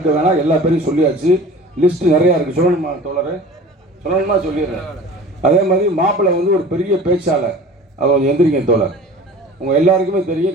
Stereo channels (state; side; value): normal; both; correlation 0.42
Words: வேணாம், எல்லா பேரையும் சொல்லியாச்சு. லிஸ்ட் நிறையா இருக்குது. சொல்லணுமா தோழர்? சொல்லணுமா? சொல்லிடுறேன். அதே மாதிரி மாப்பிள்ளை ஒரு பெரிய பேச்சாளர், அவர் எந்திரிங்க தோழர். உங்கள் எல்லாருக்குமே